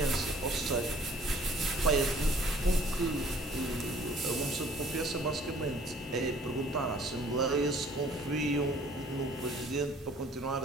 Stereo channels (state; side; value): normal; both; correlation 0.55